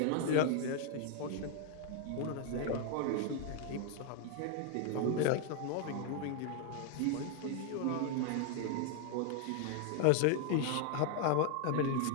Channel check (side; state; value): both; different; correlation 0.00